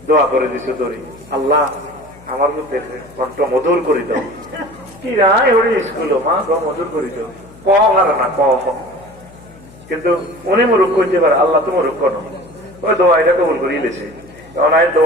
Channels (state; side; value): noise; left; hum, 23 dB below the sound